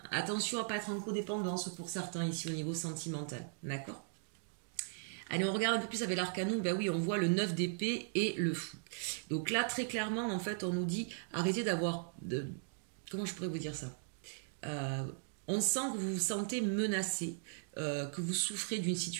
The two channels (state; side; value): silent; left; digital silence